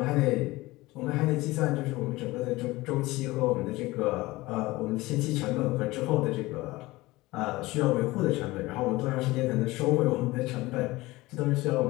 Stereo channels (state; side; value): quieter; right; 20.0 dB